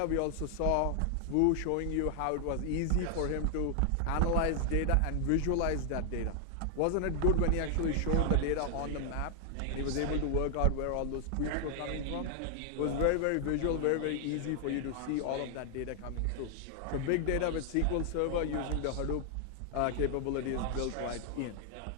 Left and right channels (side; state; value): both; different; correlation 0.00